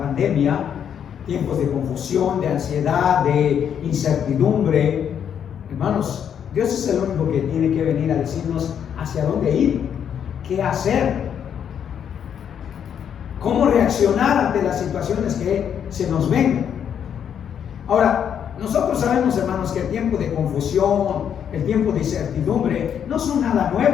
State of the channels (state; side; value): quieter; right; 8.5 dB